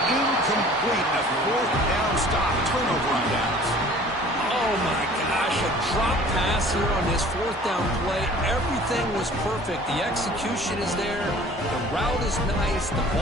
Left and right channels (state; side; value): normal; both; correlation 0.49